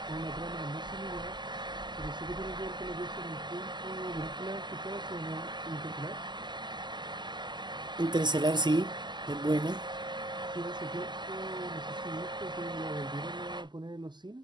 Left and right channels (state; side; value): late; left; 0.21 ms